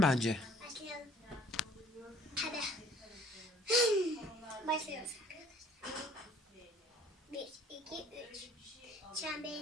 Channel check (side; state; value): both; normal; correlation 0.55